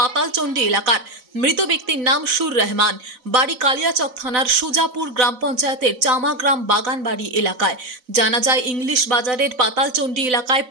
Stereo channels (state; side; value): late; left; 4.0 ms